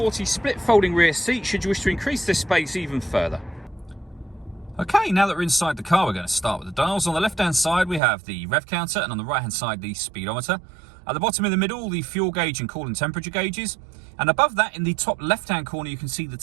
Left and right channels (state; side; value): drops out; left; at 8.0 s